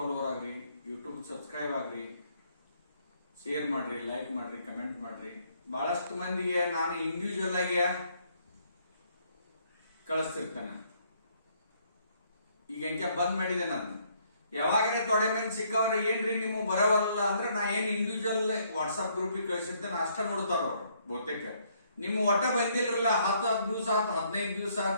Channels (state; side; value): inverted; both; correlation -0.68